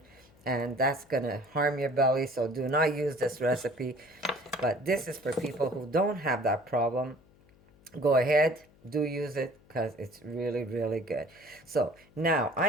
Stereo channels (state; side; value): noise; left; hum, 29 dB below the sound